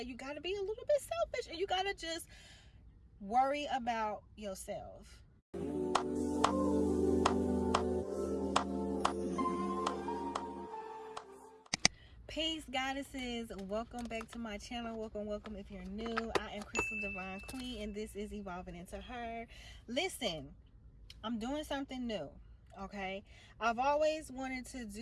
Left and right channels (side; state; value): both; identical; correlation 1.00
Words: you got to be a little bit selfish, and you got to just worry about yourself. Peace, goddesses. Welcome back to my channel. Welcome if you're new. I am Crystal Divine Queen, and this is Evolving Into Her. Listen, I'm doing something new, okay? I've always wanted to